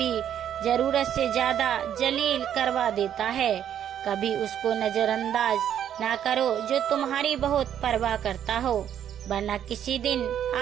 जरूरत से ज्यादा जलील करवा देता है। कभी उसको नजरअंदाज ना करो जो तुम्हारी बहुत परवाह करता हो, वरना किसी दिन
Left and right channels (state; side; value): quieter; left; 9.9 dB